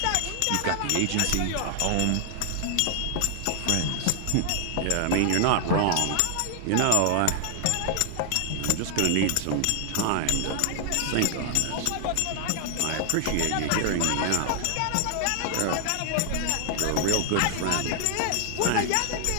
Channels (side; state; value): both; different; correlation 0.00